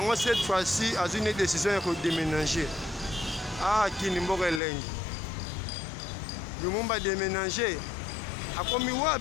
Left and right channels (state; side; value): drops out; right; at 4.6 s